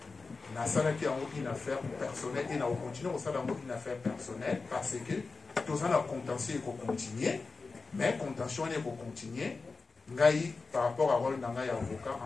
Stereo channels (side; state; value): right; quieter; 4.1 dB